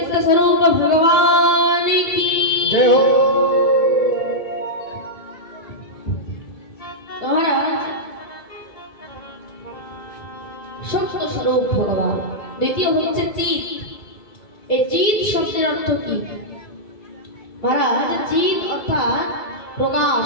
স্বরূপ ভগবান কি জয় হো। মহারাজ সত্য স্বরূপ ভগবান। দ্বিতীয় হচ্ছে চিৎ। এই চিৎ শব্দের অর্থ কি মহারাজ? চিৎ অর্থাৎ প্রকাশ,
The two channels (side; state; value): right; late; 2.7 ms